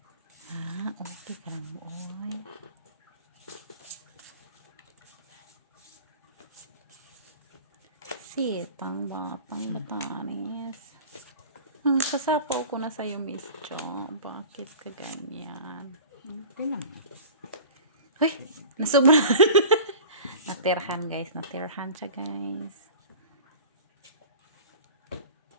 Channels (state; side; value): inverted; both; correlation -0.39